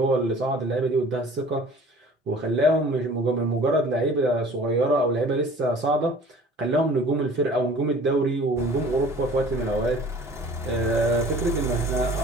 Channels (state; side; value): normal; both; correlation 0.47